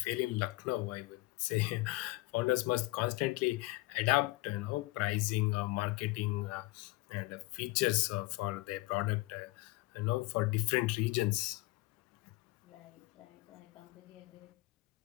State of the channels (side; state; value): right; quieter; 20.8 dB